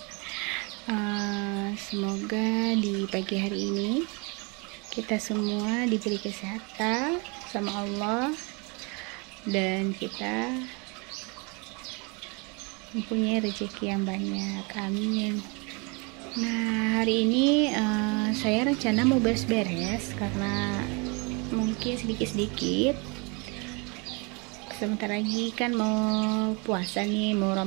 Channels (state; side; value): quieter; left; 30.6 dB